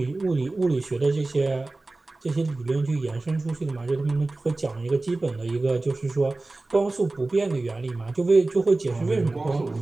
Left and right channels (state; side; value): quieter; left; 3.2 dB